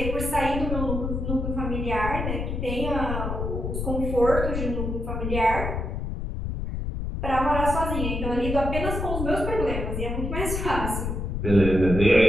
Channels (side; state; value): left; noise; rumble, 3 dB below the sound